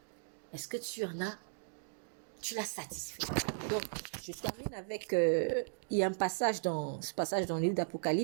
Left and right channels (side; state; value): left; silent; digital silence